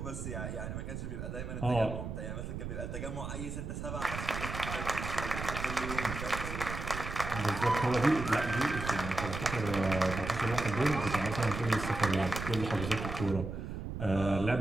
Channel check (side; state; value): right; noise; rumble, 6 dB below the sound